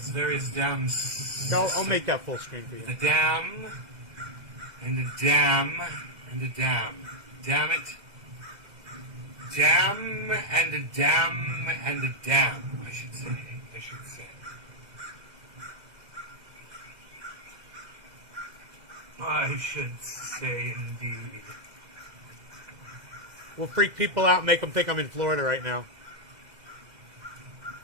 various dams. I'll make that full screen for you. A dam, and a dam, and a dam. Damn it. Dam, and a dam, and a dam, I should say. I should say indeed. We'll freak people out and make them think I'm in Florida right now.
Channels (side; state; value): left; late; 2.0 ms